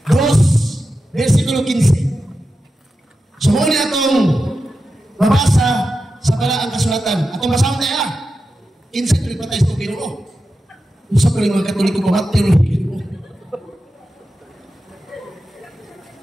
2, versikulo 15. So muna itong mabasa sa balaang kasulatan. Atong basahon tayo Kinsa ito patay sa Ginoo. Usa pa rin mga Katoliko pamatay ng Ginoo.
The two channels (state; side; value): normal; both; correlation 0.91